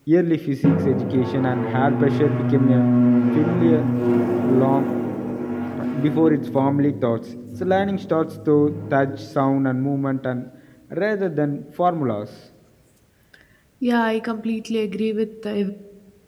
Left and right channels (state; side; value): identical; both; correlation 1.00